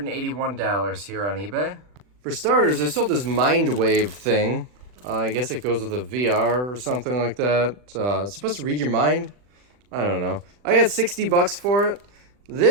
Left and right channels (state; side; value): late; left; 40 ms